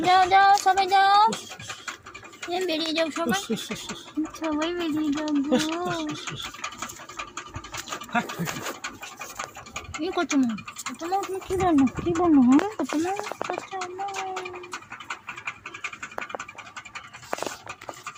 যাও যাও সবাই যাও, বেরিয়ে যাও সবাই, সবাই বেরিয়ে যাও গো। কি করছো মা? তোমার কি বললো? কি বললো? হ্যাঁ তোমার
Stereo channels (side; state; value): both; identical; correlation 1.00